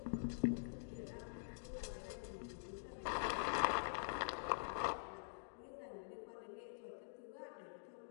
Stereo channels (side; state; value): right; silent; digital silence